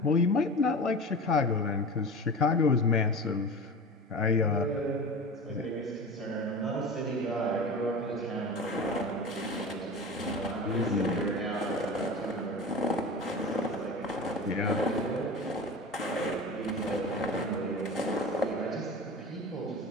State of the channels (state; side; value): normal; both; correlation 0.32